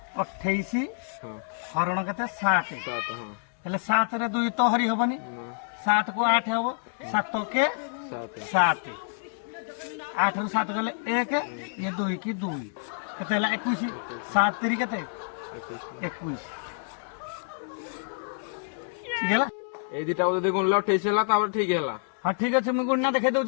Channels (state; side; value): silent; right; digital silence